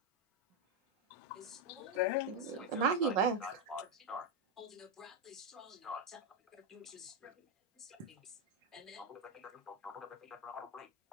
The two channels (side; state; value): both; normal; correlation 0.04